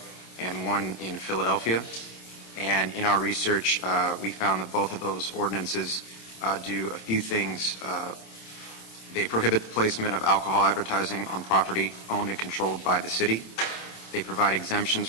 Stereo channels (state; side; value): late; right; 27 ms